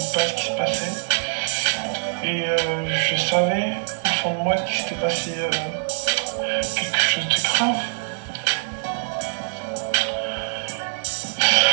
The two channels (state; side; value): silent; left; digital silence